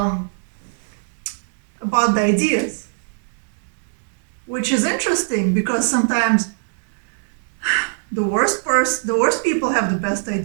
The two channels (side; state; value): left; silent; 65 dB below the other